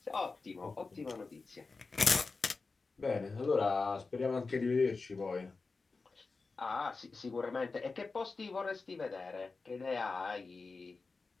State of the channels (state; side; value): quieter; right; 4.1 dB